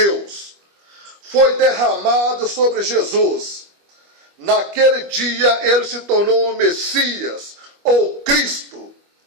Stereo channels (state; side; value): late; left; 25 ms